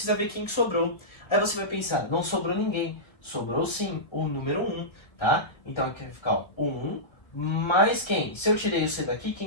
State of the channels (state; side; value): late; right; 1.7 ms